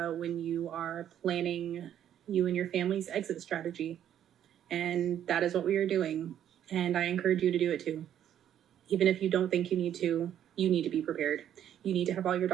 when you are planning you and your family's exit strategy. And that is what we are doing. And I encourage you to do it too. Even if you don't think you need to be prepared. You need to have all your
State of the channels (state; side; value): quieter; left; 10.4 dB